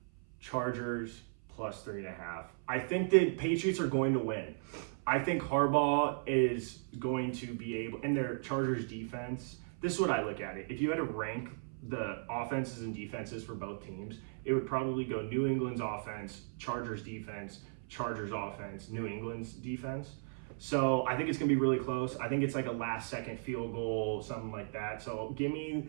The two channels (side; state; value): left; silent; 54 dB below the other